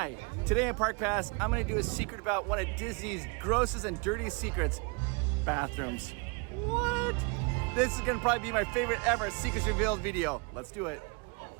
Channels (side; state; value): left; quieter; 31.3 dB